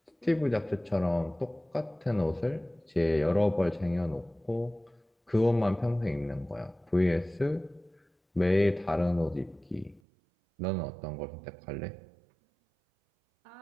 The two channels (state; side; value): drops out; left; at 10.0 s